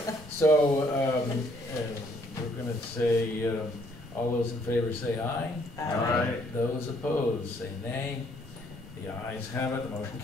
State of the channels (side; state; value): both; normal; correlation 0.66